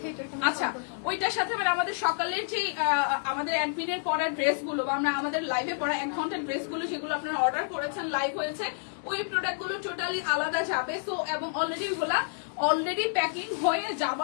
আচ্ছা ওইটার সাথে মানে আমাদের সকালের যে আমাদের অ্যাডমিনের পড়া ড্রেসগুলো বা আমরা আমাদের লাইভে পড়া 1 ঘন্টার ড্রেসগুলো সেগুলো আপনারা অর্ডার করেছেন, লাইভ হয়েছে, ওই প্রোডাক্টগুলো টোটালি আলাদা যাবে। সো এবং অলরেডি প্যাকিং হয়ে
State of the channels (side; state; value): right; silent; digital silence